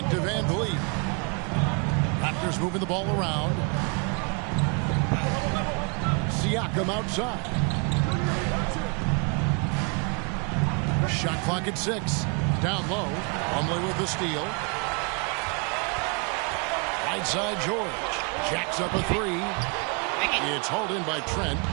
to VanVleet. Raptors moving the ball around. Siakam outside. Shot clock at 6. Down low. Plumlee with the steal. Right side George. Jacks up a 3. It's hauled in by Trent.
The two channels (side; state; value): left; quieter; 34.2 dB